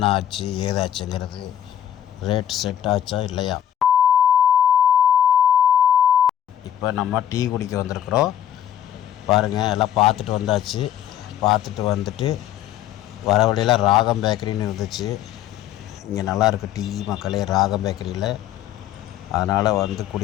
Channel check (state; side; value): quieter; right; 10.8 dB